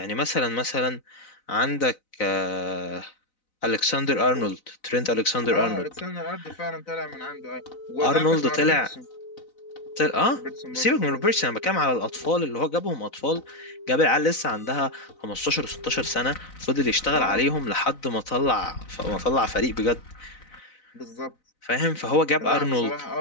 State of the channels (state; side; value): late; right; 4.0 ms